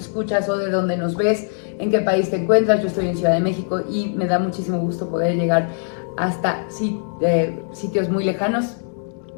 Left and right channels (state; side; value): silent; right; 64 dB below the other